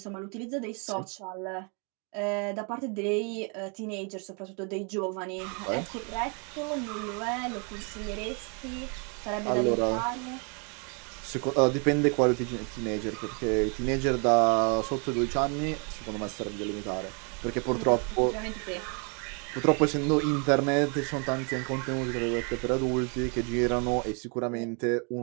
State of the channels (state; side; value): quieter; left; 36.4 dB